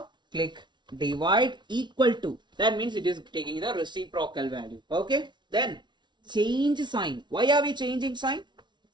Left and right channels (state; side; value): late; left; 0.22 ms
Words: click divide equal to. That means it is taking the reciprocal value. Okay. Then change sign. Why are we changing sign?